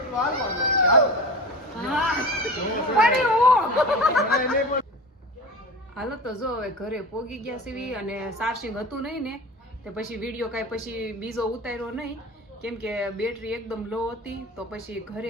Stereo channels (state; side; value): normal; both; correlation 0.32